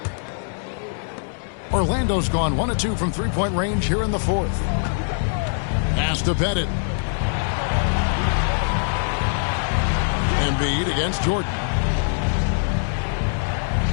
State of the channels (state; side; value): silent; right; 64 dB below the other